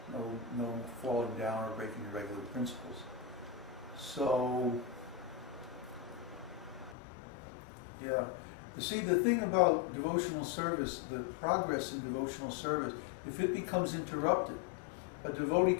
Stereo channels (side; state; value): right; drops out; at 7.0 s